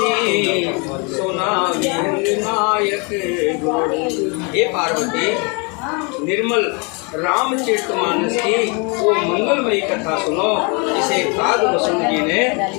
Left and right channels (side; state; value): right; quieter; 32.3 dB